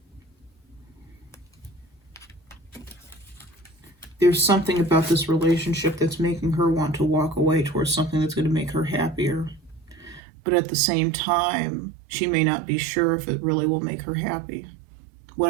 There's something about this relationship that's making her want to walk away towards something that's going to make her happier. But at the same time, she may not be sure if it really will make her happy.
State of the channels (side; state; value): left; drops out; at 10.2 s